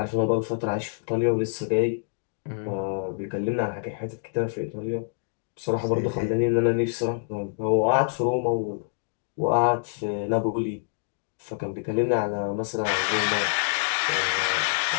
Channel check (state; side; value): silent; right; digital silence